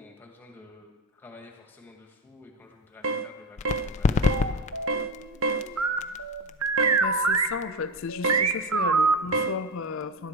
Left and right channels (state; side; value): normal; both; correlation 0.19